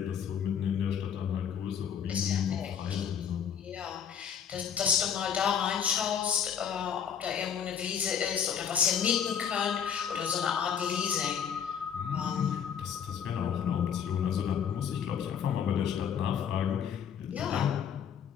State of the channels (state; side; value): quieter; right; 8.1 dB